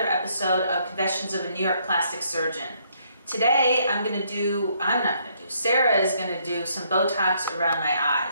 episode of Confessions of a New York Plastic Surgeon. Today, Sarah is going to do some Botox around my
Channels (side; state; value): both; inverted; correlation -0.70